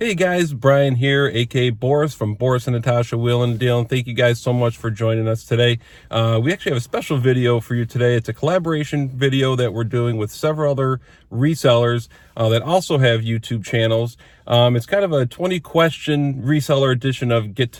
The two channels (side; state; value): both; identical; correlation 1.00